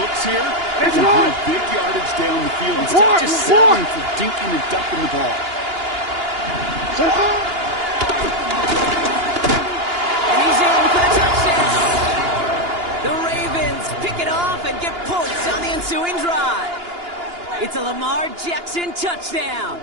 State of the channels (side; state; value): left; late; 2.9 ms